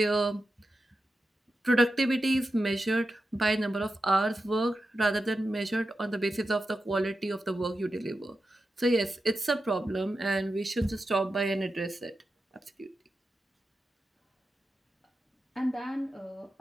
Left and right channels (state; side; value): normal; both; correlation 0.90